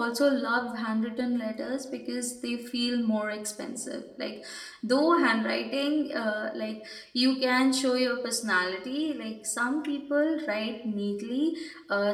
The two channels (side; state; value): both; identical; correlation 1.00